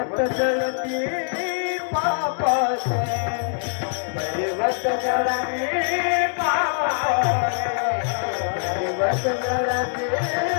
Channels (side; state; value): right; silent; 63 dB below the other